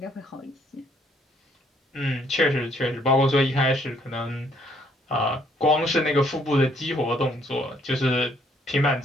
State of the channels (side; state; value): both; normal; correlation 0.66